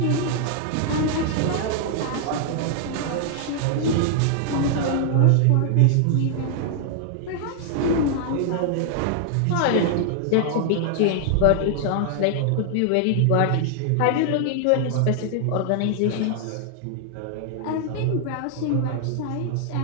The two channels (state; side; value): different; both; correlation 0.00